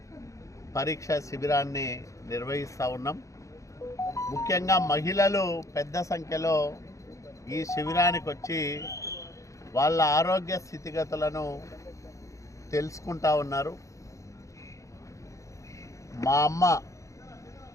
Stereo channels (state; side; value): late; right; 0.15 ms